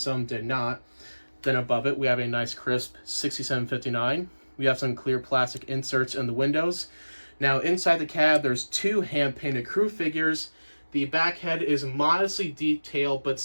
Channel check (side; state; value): both; inverted; correlation -1.00